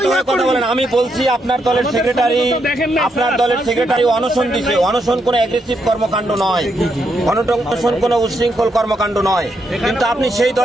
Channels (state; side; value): normal; both; correlation 0.79